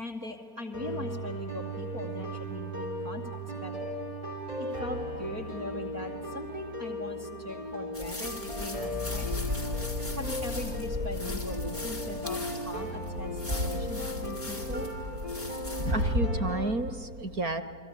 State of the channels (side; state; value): left; late; 4.4 ms